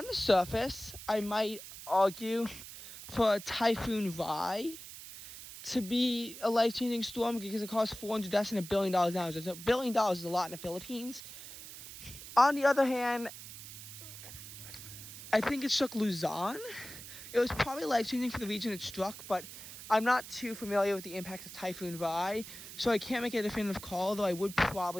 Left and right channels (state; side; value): noise; right; hiss, 13 dB below the sound